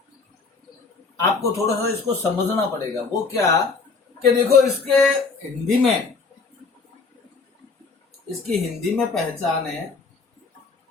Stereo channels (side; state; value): right; quieter; 4.4 dB